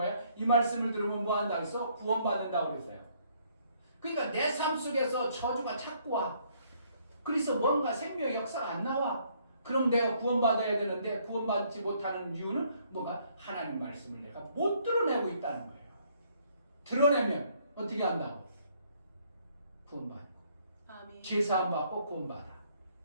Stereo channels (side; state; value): both; inverted; correlation -0.66